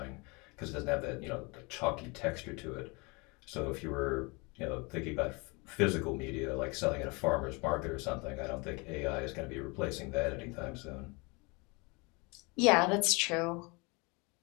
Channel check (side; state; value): right; quieter; 28.3 dB